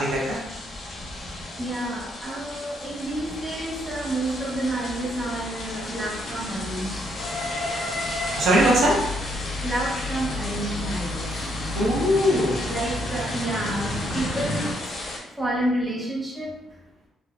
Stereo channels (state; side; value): normal; both; correlation 0.73